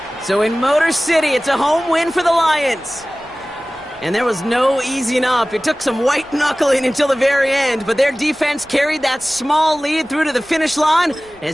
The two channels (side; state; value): right; noise; rumble, 30 dB below the sound